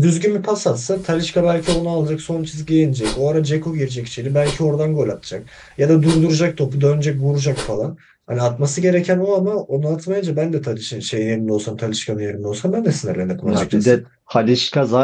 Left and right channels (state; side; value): identical; both; correlation 1.00